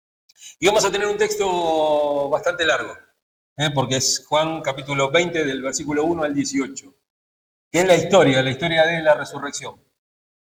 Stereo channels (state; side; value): identical; both; correlation 1.00